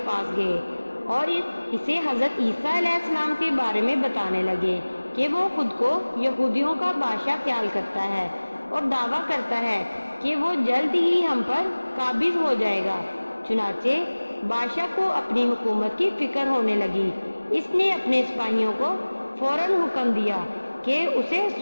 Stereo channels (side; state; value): both; inverted; correlation -1.00